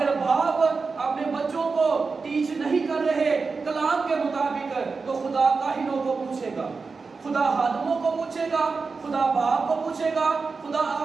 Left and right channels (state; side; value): quieter; left; 4.5 dB